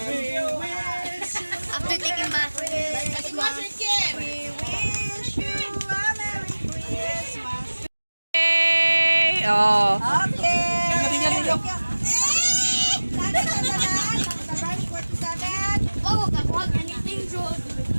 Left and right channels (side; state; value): both; inverted; correlation -1.00